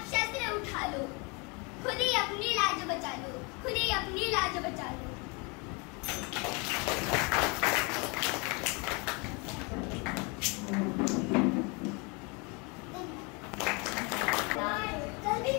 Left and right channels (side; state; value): right; quieter; 30.5 dB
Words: शस्त्र उठा लो. खुद ही अपनी लाज बचा लो, खुद ही अपनी लाज बचा लो. कल भी